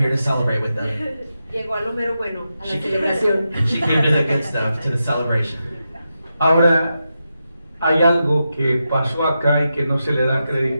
to celebrate with them. Llegó a lo mero bueno, a la She celebración. she came to the good stuff, to the celebration. Ahora, hay algo que pasó acá y que no se le da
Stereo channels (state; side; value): inverted; both; correlation -0.88